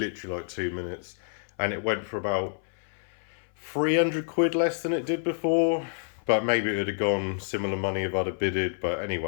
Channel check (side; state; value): right; silent; 56 dB below the other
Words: like 2 minutes. And it went for about 300 quid less than it did before. But maybe it would have gone similar money if I'd have bidded. But